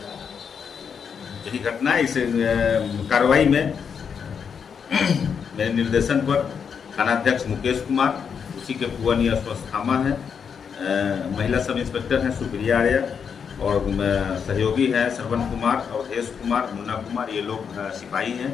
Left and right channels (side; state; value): right; quieter; 6.8 dB